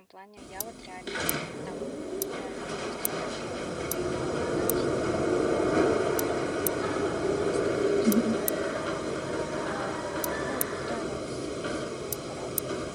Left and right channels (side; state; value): both; identical; correlation 1.00